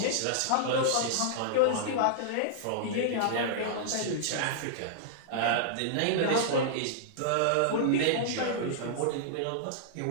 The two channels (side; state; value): both; different; correlation -0.02